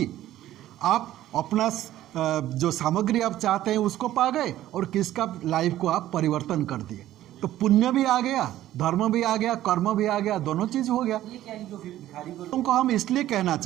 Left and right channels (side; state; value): left; quieter; 13.6 dB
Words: आप अपना जो सामग्री आप चाहते हैं उसको पा गए और किसका लाइफ को आप परिवर्तन कर दिए। तो पुण्य भी आ गया, धर्म भी आ गया, कर्म भी आ गया, दोनों चीज़ हो गया। ये क्या है जो भिखारी को उनको हम इसलिए कहना